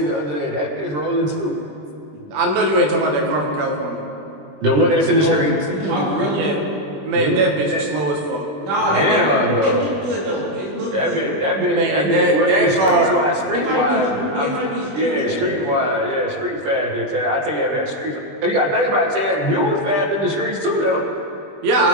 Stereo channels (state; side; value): late; left; 20 ms